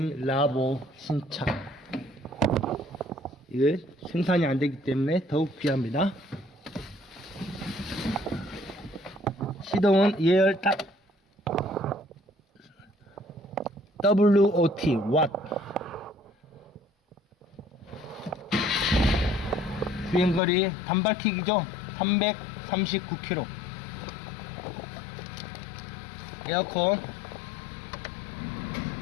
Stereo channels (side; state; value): right; drops out; at 20.4 s